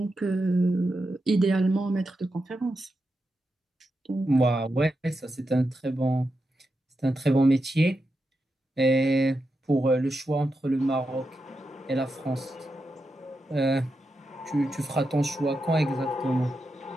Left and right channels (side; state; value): both; normal; correlation 0.87